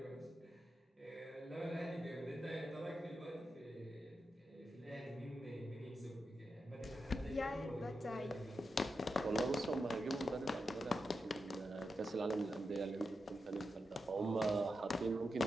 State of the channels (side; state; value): both; normal; correlation 0.88